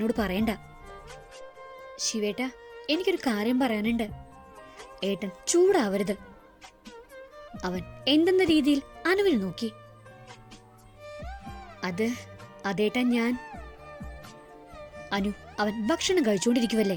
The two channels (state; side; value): identical; both; correlation 1.00